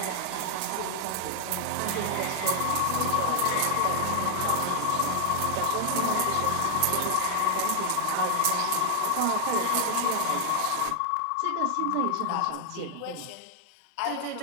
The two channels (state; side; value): different; both; correlation 0.00